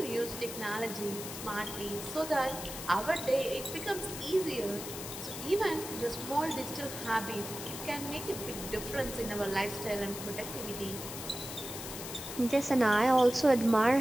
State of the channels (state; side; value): noise; left; hiss, 9 dB below the sound